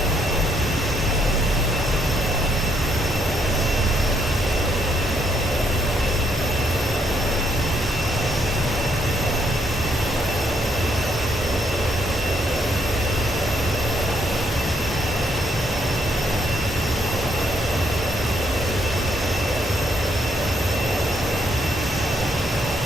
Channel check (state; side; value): normal; both; correlation 0.72